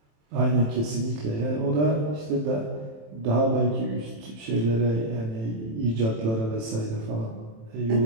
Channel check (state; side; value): late; left; 27 ms